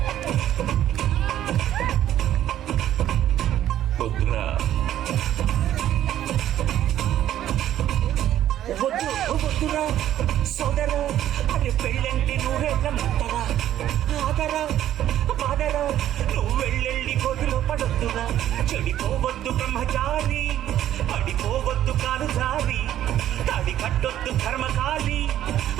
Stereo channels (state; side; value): quieter; left; 12.0 dB